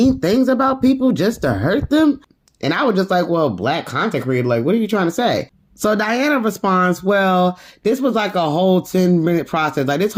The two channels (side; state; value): both; identical; correlation 1.00